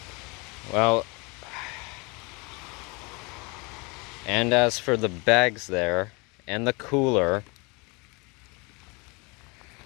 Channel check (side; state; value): right; quieter; 28.6 dB